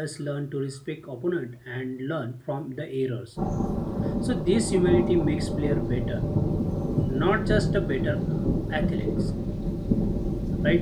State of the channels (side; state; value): both; identical; correlation 1.00